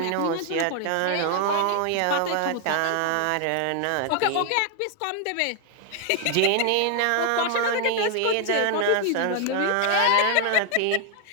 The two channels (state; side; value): different; both; correlation 0.00